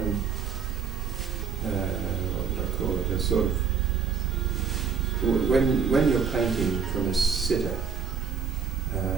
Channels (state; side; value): quieter; left; 6.4 dB